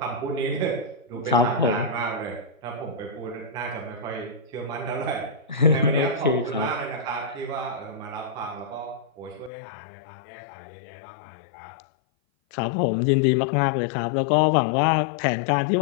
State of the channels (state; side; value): drops out; right; at 9.5 s